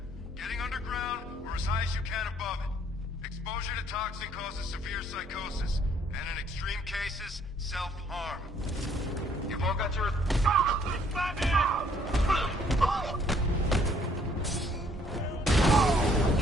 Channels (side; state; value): both; normal; correlation 0.64